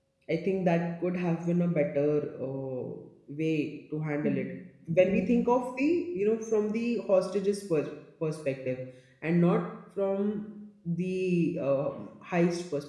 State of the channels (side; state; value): both; identical; correlation 1.00